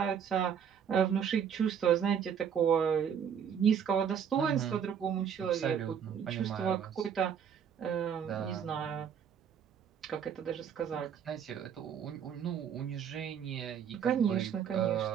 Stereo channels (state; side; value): quieter; left; 7.9 dB